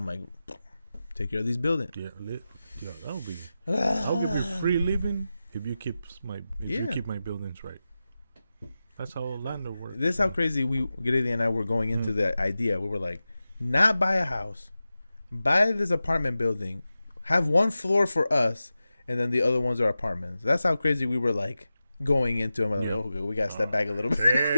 like, take care of these buildings. Yeah, that'll be. I'll give you free living if you keep you keep my buildings right. That's how Orlando works. This is how crazy Grady and I were going into the idea. We were like, not buy a house, buy this apartment building, have one floor for us, and then the other ones are apartments. That's how crazy we were like going into them. Like, okay, we gotta step back a little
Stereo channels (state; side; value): inverted; both; correlation -0.93